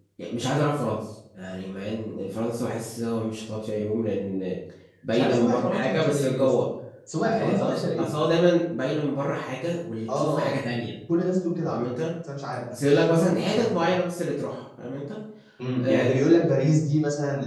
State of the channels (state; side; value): identical; both; correlation 1.00